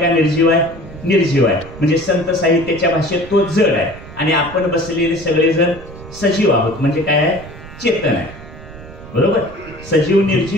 निर्जीव आहे? निर्जीव आहे. म्हणजे संत साहित्याच्या भाषेत तो जड आहे आणि आपण बसलेले सगळेजण सजीव आहोत म्हणजे काय आहे चेतन आहे. बरोबर, सजीव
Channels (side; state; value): right; noise; rumble, 16 dB below the sound